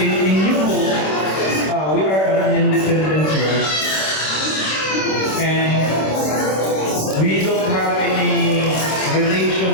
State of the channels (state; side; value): late; right; 26 ms